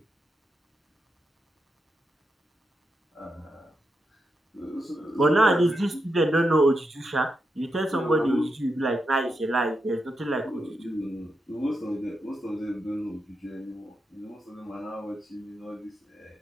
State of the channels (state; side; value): normal; both; correlation 0.85